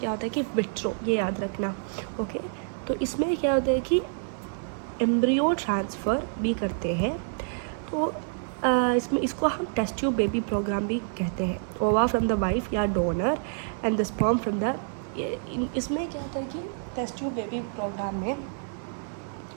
होता है कि विट्रो, ये याद रखना। ओके, तो इसमें क्या होता है कि एम्ब्रियो ट्रांसफ़र भी करते हैं। तो इसको हम टेस्ट ट्यूब बेबी प्रोग्राम भी कहते हैं। ओवा फ्रॉम द वाइफ या donor and the sperm from the, इसमें क्या होता है कि टेस्ट ट्यूब बेबी प्रोग्राम में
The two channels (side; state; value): left; silent; 59 dB below the other